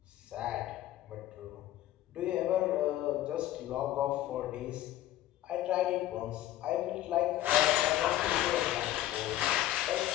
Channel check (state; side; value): quieter; right; 13.9 dB